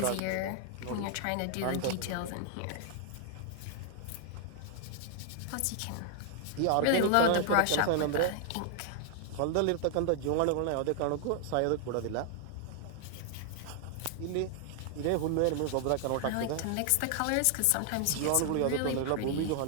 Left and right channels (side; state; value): both; different; correlation 0.00